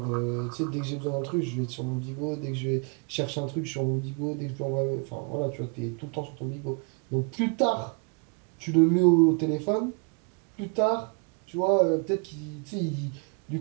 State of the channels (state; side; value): quieter; left; 35.3 dB